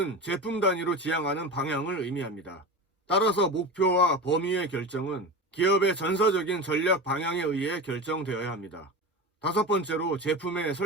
제품 단위로 지향하는 방향을 의미합니다. 따라서 목표와 범위의 결정은 기업의 전사적인 전략 방향에 의해 결정되어야 합니다. 다섯 번째로 제품의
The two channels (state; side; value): normal; both; correlation 0.27